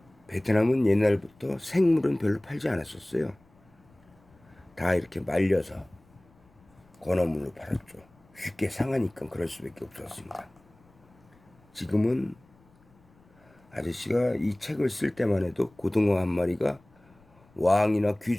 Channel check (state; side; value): noise; left; rumble, 30 dB below the sound